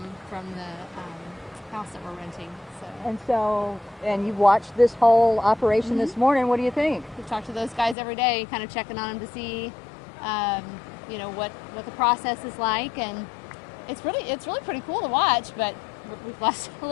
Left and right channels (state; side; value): drops out; right; at 8.0 s